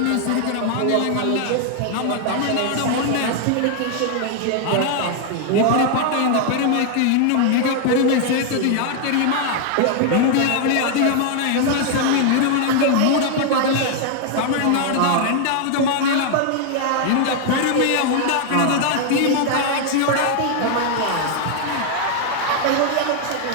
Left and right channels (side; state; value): both; different; correlation 0.00